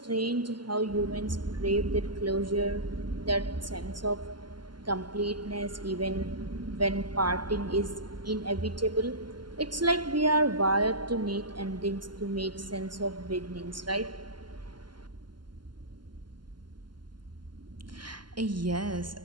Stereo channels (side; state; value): left; late; 0.71 ms